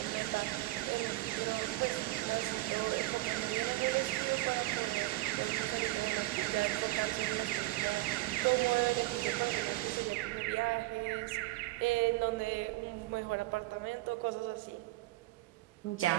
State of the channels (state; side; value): quieter; left; 19.1 dB